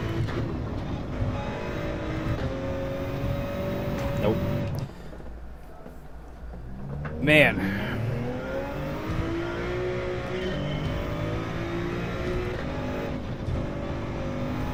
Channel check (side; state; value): both; identical; correlation 1.00